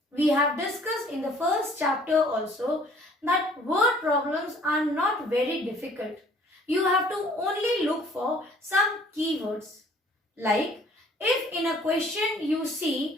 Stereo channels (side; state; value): both; normal; correlation 0.56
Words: We have discussed in the first chapter also that word problems are not very difficult. You have to only look for some keywords. Like if in a question you